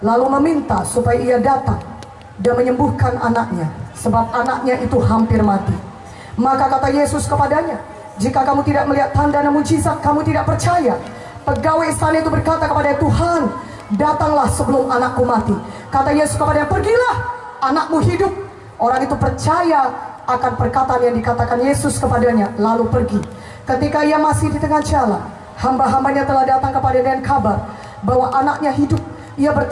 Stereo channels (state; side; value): identical; both; correlation 1.00